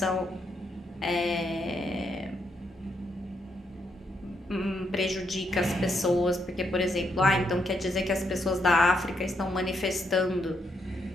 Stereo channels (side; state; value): both; normal; correlation 0.78